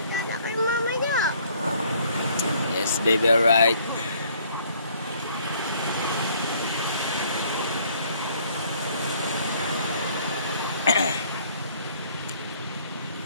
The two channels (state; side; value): inverted; both; correlation -0.61